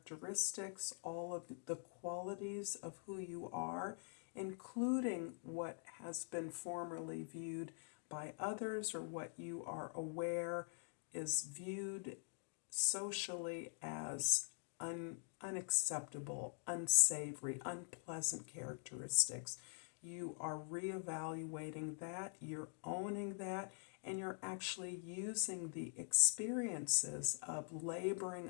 all of the qualities of who you are, including what has been formerly viewed by others or what you are aware is viewed socially as unacceptable, unsavory, unpleasant characteristics. You are reevaluating that, you're owning that, and you're actually using the experiences of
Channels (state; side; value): silent; right; digital silence